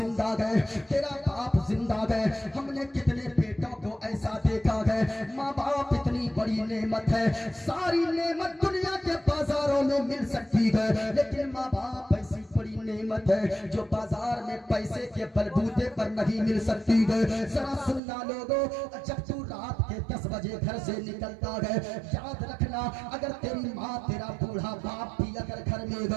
गए, तेरा बाप जिंदा गए, हमने कितने बेटों को ऐसा देखा है। माँ बाप इतनी बड़ी नेमत है, सारी नेमत दुनिया के बाजारों में मिल सकती है, लेकिन माँ बाप ऐसी बड़ी नेमत है जो बाजार में पैसे के बलबूते पर नहीं मिल सकती है। जरा सुनना लोगों, जब तू रात के 10 बजे घर से निकलता है, याद रखना अगर तेरी माँ तेरा बूढ़ा बाप भी अगर घर में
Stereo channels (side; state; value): left; drops out; at 18.0 s